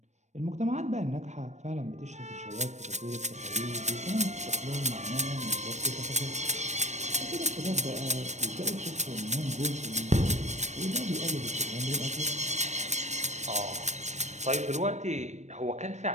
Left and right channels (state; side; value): late; left; 0.34 ms